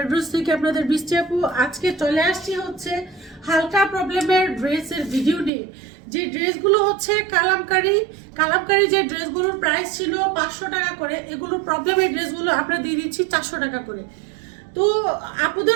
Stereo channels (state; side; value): drops out; left; at 5.5 s